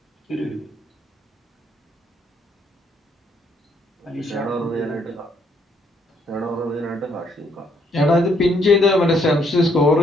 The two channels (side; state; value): both; normal; correlation 0.70